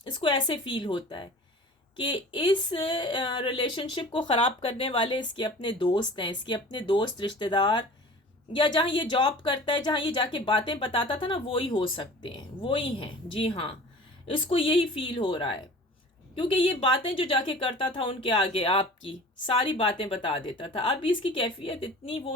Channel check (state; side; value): normal; both; correlation 0.42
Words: इसको ऐसे फील होता है कि इस रिलेशनशिप को ख़राब करने वाले इसके अपने दोस्त हैं, इसके अपने दोस्त रिश्तेदार, या जहाँ ये जॉब करता है, जहाँ ये जाके बातें बताता था ना, वो ही हो सकते हैं, वो ही हैं। जी हाँ, इसको यही फील हो रहा है, क्योंकि ये बातें जो जाके करता था उनके आगे आपकी सारी बातें बता देता था। अब इसकी कैफियत इतनी